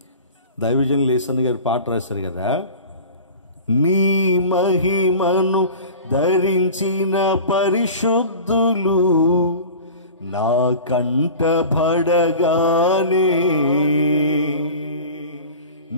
దైవజన్ లేసన్ గారు పాట రాశారు కదా, నీ మహిమను ధరించిన పరిశుద్ధులు నా కంటబడగానే,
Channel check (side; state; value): both; inverted; correlation -0.37